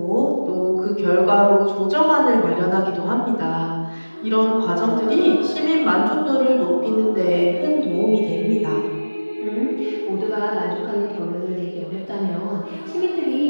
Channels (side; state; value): both; inverted; correlation -1.00